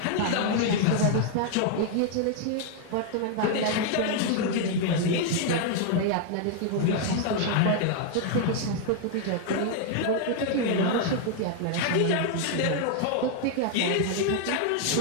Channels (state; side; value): different; both; correlation 0.00